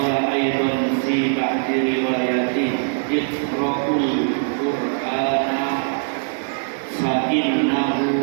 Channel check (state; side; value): silent; left; 55 dB below the other